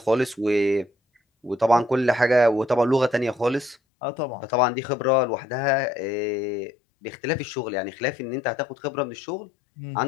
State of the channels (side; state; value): right; drops out; at 3.8 s